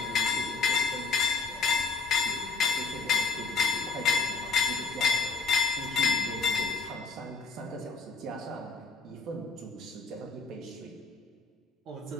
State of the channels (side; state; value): right; quieter; 4.5 dB